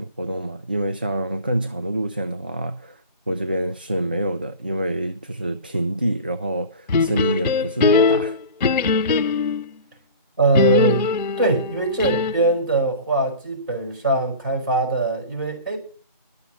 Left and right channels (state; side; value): inverted; both; correlation -0.37